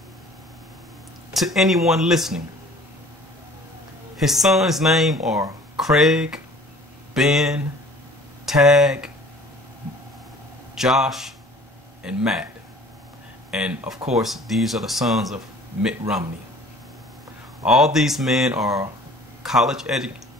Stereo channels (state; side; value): normal; both; correlation 0.49